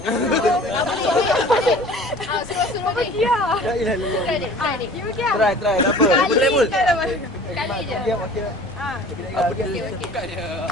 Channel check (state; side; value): normal; both; correlation 0.46